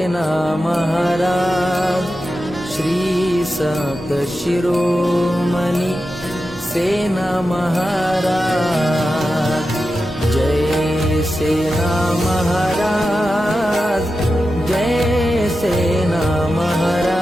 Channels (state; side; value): normal; both; correlation 0.91